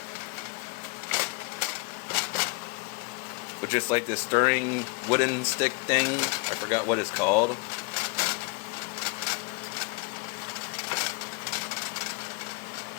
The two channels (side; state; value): right; quieter; 30.8 dB